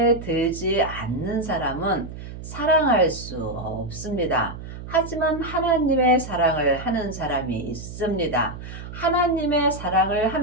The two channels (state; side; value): noise; right; hum, 11 dB below the sound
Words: 들지 않는 사람은 사랑할 수 없습니다. 하지만 하나님의 사랑을 하는 사람이 있습니다. 하나님의 사랑을